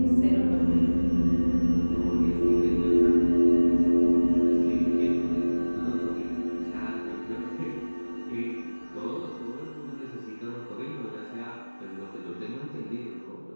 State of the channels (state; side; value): inverted; both; correlation -1.00